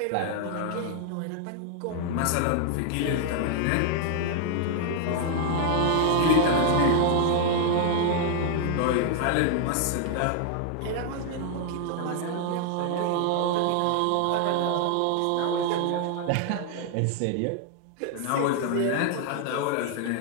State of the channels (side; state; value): both; different; correlation 0.00